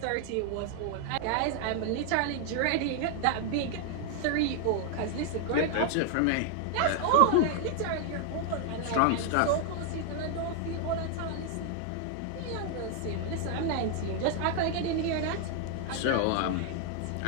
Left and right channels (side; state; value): both; different; correlation 0.00